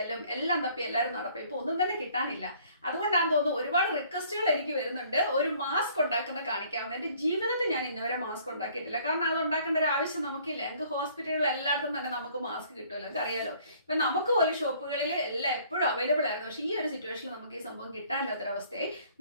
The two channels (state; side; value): inverted; both; correlation -0.58